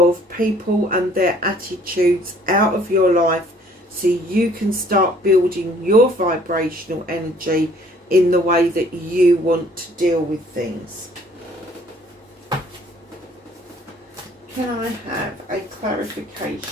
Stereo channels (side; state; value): both; normal; correlation 0.58